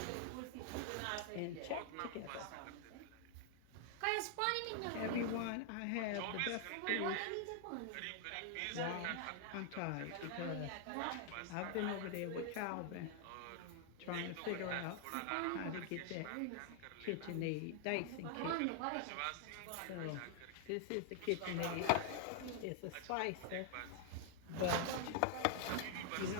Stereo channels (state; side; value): different; both; correlation 0.00